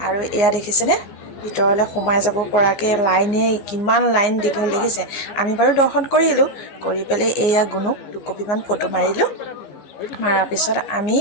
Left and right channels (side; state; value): right; late; 14 ms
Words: আৰু এয়া দেখিছেনে, ভিতৰলৈ সোমাই যাব পৰাকৈ কিমান লাইন দীঘল দেখিছে। আমি বাৰু দৰ্শন কৰিলোঁ, কৰি পেলাই এয়া গুণুক দুকপিমান ফটো মাৰিলোঁ। মাৰাৰ পিছত আমি